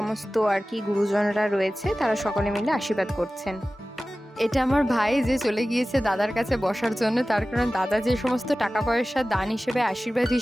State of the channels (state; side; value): normal; both; correlation 0.96